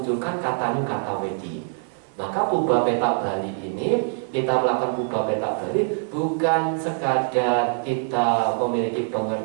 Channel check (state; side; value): silent; left; 63 dB below the other